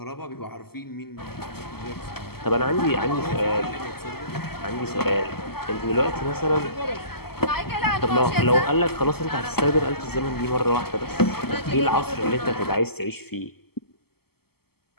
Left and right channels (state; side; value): late; right; 0.96 ms